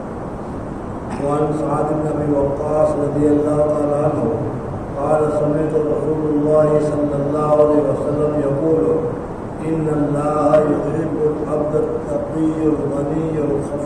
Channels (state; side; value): identical; both; correlation 1.00